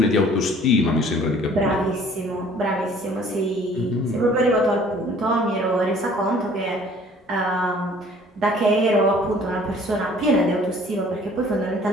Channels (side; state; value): both; normal; correlation 0.53